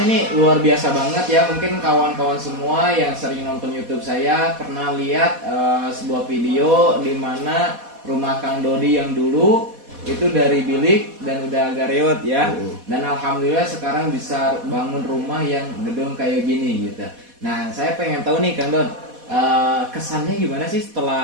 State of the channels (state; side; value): late; left; 4.1 ms